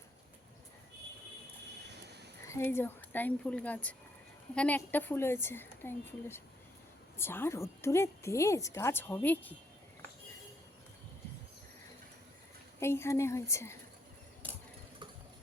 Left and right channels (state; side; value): normal; both; correlation 0.73